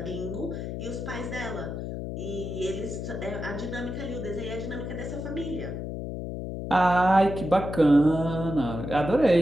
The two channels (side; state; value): left; noise; hum, 5 dB below the sound